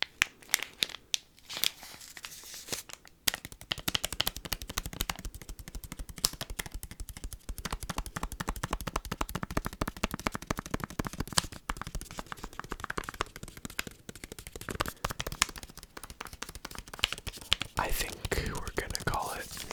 I think we're gonna call it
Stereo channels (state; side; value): identical; both; correlation 1.00